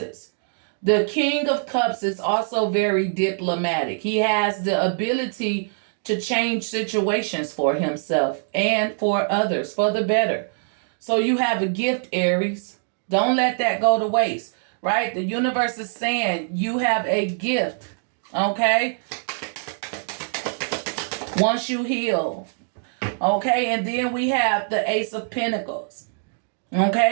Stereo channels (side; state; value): left; silent; 63 dB below the other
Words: The King of Cups is also very diplomatic. He has the ability to change situations for himself and for others for the better. So you have a gift, Aries. Don't let that go to waste, right? The universe is saying you have a gift, okay? Once you heal, okay? And then we have the Ace of Pentacles,